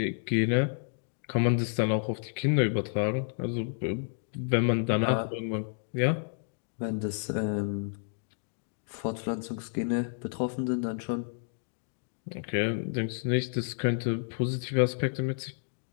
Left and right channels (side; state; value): right; silent; digital silence